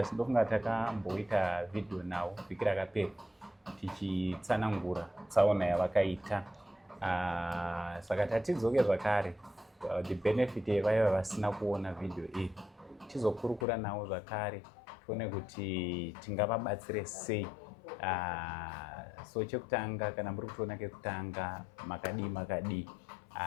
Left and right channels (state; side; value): drops out; right; at 13.7 s